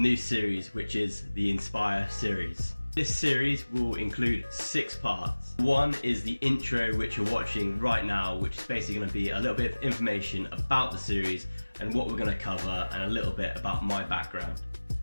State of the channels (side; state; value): both; inverted; correlation -1.00